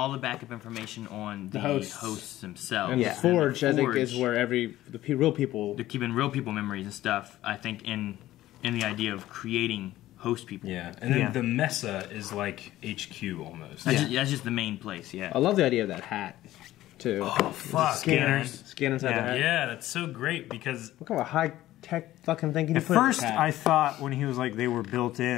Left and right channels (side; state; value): right; quieter; 15.0 dB